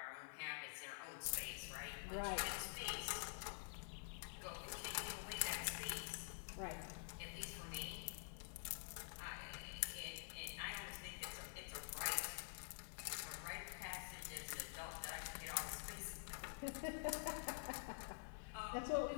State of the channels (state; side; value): silent; right; digital silence